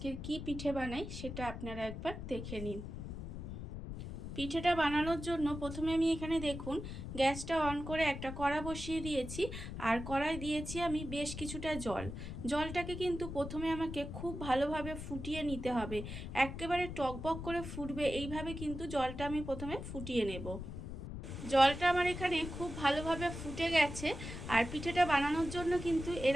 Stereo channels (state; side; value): noise; left; rumble, 8 dB below the sound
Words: কি পিঠে বানাই সেটা আপনারা একবার দেখে নিন। পিঠেটা বানানোর জন্য প্রথমে আমি এখানে দেখুন গ্যাসটা অন করে একটা কড়া বসিয়ে দিয়েছি। আর কড়াই দিয়েছি আমি বেশ কিছুটা জল। জলটাকে কিন্তু প্রথমে আমাকে খুব ভালোভাবে ফুটিয়ে নিতে হবে। একেবারে টকবক করে ফুটবে এইভাবে কিন্তু জলটা আমি প্রথমে ফুটিয়ে নেব। জলটা আমার এখানে খুব ভালোভাবে ফুটে গেছে। আর পিঠেটা বানানোর জন্য কিন্তু